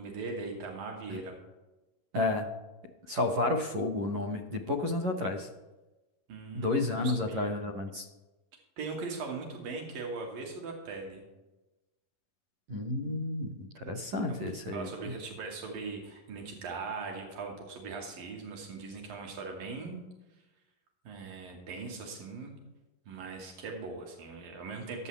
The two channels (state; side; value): late; left; 11 ms